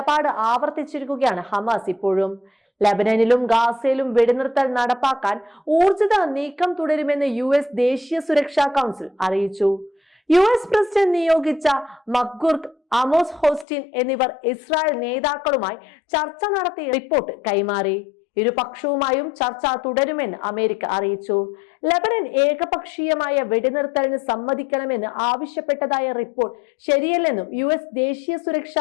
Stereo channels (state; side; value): drops out; right; at 13.7 s